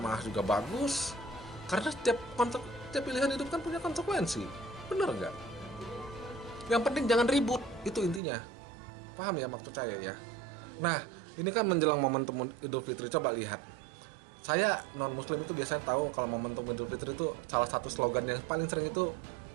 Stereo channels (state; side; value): drops out; left; at 8.2 s